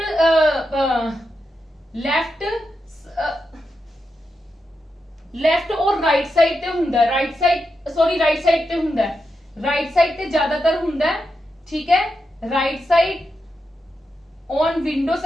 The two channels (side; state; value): both; normal; correlation 0.87